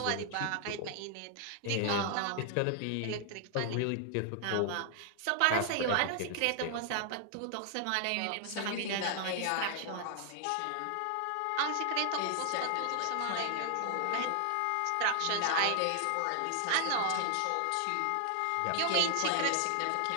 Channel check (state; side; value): different; both; correlation 0.00